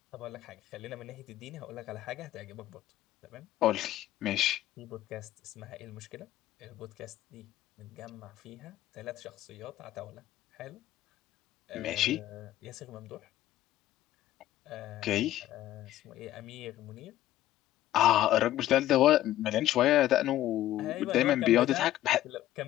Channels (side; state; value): right; quieter; 13.9 dB